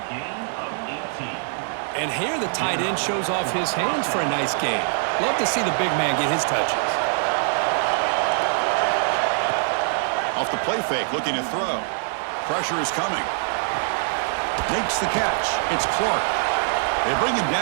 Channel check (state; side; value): silent; left; digital silence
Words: And here the tight end shows off his hands for a nice game. Love to see the big man get his touches. Off the play fake, looking to throw. Pressure is coming. Makes the catch. It's Clark. They bring him